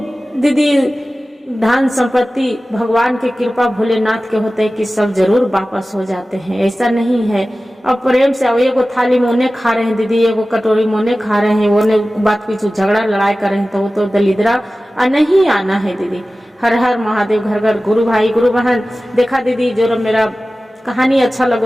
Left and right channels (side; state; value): both; normal; correlation 0.96